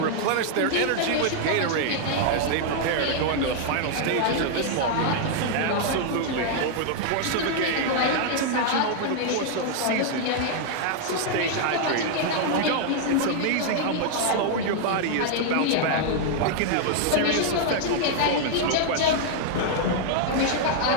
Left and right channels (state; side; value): different; both; correlation 0.00